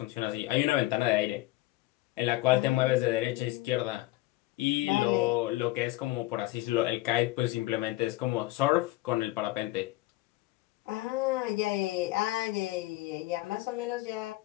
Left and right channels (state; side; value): quieter; right; 18.4 dB